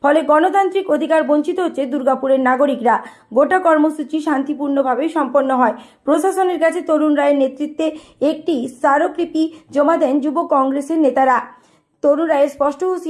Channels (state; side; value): identical; both; correlation 1.00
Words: ফলে গণতান্ত্রিক অধিকার বঞ্চিত হচ্ছে দুর্গাপুরের নাগরিকরা। গোটা কর্মসূচি শান্তিপূর্ণভাবে সম্পন্ন হয়। প্রশাসনের কাছে তরুণ রায়ের নেতৃত্বে একটি স্মারকলিপি জমা দেন যুব কংগ্রেসের নেতারা। তরুণ রায়ের স্পষ্ট